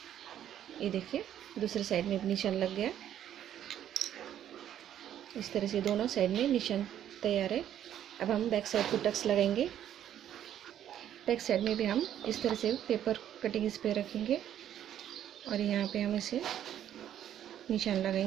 ये देखिए दूसरे साइड में भी निशान लग गया। इस तरह से दोनों साइड में निशान तैयार है। अब हम बैक साइड को टक्स लगाएंगे। बैक साइड में भी हम इस तरह से पेपर कटिंग इस पे रखेंगे और यहाँ पे हम इसे निशान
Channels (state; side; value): quieter; left; 10.7 dB